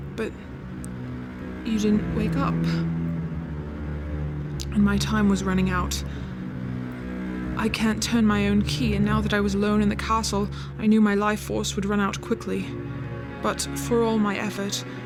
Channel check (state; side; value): identical; both; correlation 1.00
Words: but you didn't wake up. And my time was running out. I can't turn my own key, and now that I was alone in the castle, I knew my life force would run out quickly. But for all my effort,